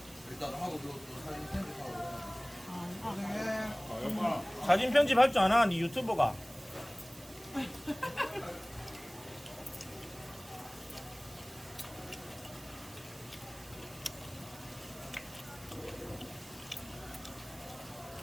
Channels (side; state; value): right; noise; hiss, 19 dB below the sound